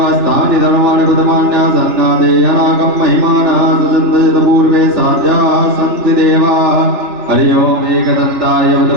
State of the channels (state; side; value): late; left; 3.4 ms